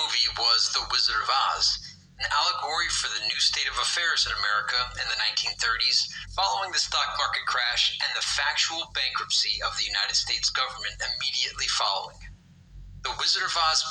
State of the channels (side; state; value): both; identical; correlation 1.00